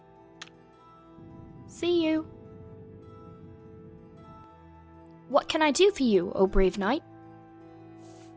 See you. What can I do for you, O brave knight?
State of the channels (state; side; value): identical; both; correlation 1.00